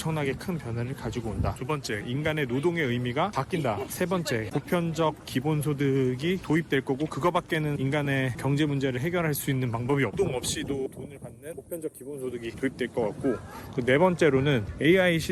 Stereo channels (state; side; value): identical; both; correlation 1.00